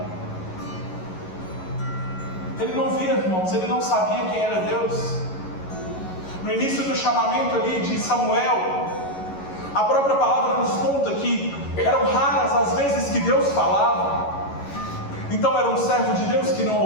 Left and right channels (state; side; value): late; right; 11 ms